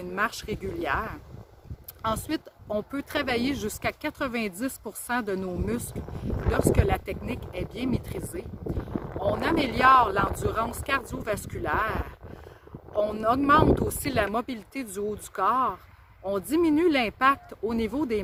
marche régulière. Ensuite, on peut travailler jusqu'à 90% de nos muscles lorsque la technique est bien maîtrisée. On améliore l'endurance cardiovasculaire. On augmente aussi la mobilité du haut du corps. On diminue l'impact au niveau des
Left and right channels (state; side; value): identical; both; correlation 1.00